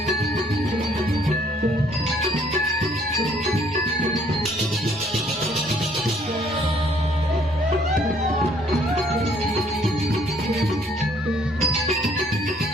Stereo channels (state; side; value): normal; both; correlation 0.63